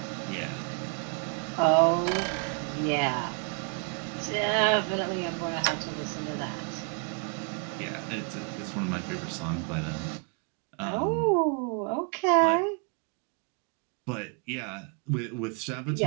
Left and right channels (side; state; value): left; quieter; 40.0 dB